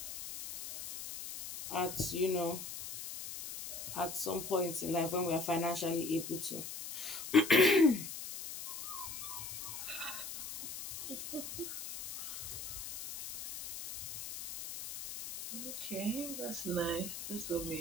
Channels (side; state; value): left; noise; hiss, 8 dB below the sound